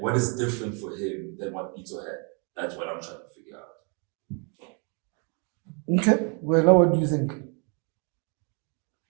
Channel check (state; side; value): quieter; left; 36.3 dB